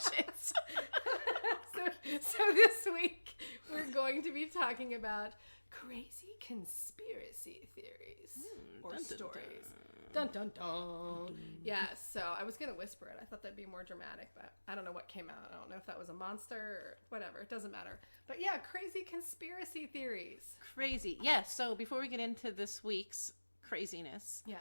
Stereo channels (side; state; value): both; inverted; correlation -1.00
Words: So this week, we're going to be talking about crazy conspiracy theories or dun, dun, stories. Dun, dun, dun. Yeah, so I was going to whisper it. I thought that'd be more dramatic, but I don't know what came out. I don't know if that was a monster or whatever. It doesn't matter. But yeah, crazy conspiracy theories. Crazy. Yes, so before we get into this week's craziness,